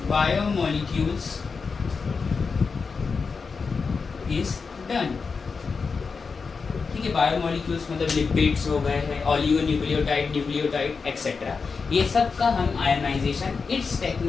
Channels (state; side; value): quieter; right; 5.0 dB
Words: biomolecules is done. ठीक है, बायोमोलिक्यूल्स मतलब लिपिड्स हो गए हैं, ऑलिगोन्यूक्लियोटाइड, न्यूक्लियोटाइड एक्सेट्रा, ये सब का हम आयोनाइजेशन इस